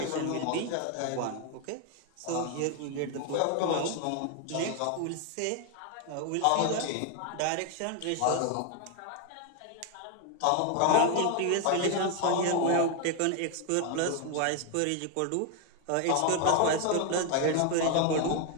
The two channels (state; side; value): different; both; correlation 0.01